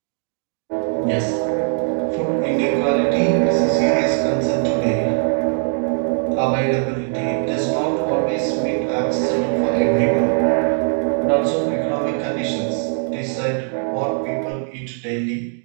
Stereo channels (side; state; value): left; silent; 57 dB below the other